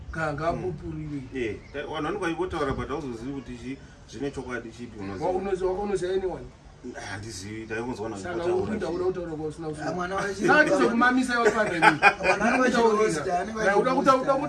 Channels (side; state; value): both; identical; correlation 1.00